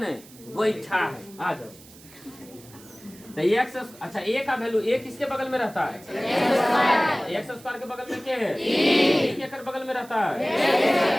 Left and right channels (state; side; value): noise; right; hiss, 22 dB below the sound